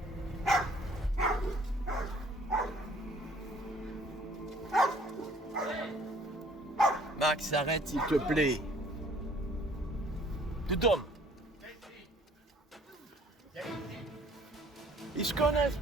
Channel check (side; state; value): both; normal; correlation 0.57